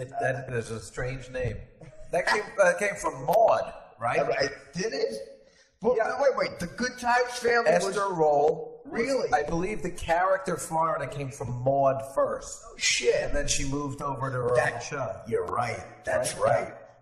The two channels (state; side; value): identical; both; correlation 1.00